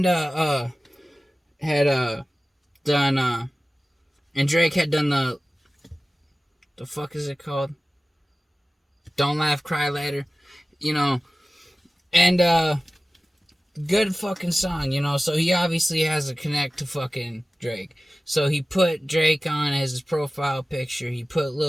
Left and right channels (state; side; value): normal; both; correlation 0.96